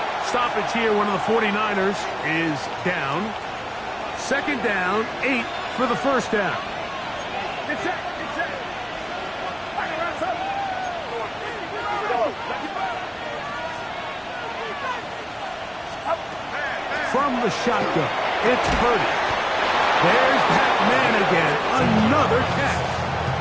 Stoppage here, one of the 49ers is down. 2nd down, 8 for the 1st down. From the shotgun, it's Purdy. There's that man again, another catch.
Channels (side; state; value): both; identical; correlation 1.00